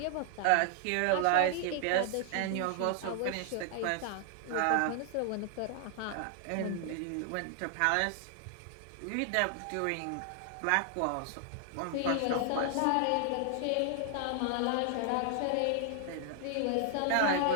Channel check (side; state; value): both; different; correlation 0.00